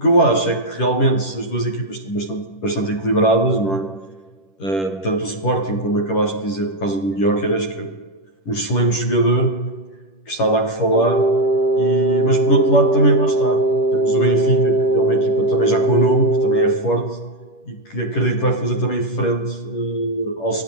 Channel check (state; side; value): late; right; 10 ms